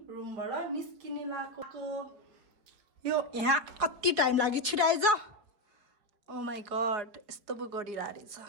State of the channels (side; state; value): left; late; 4.7 ms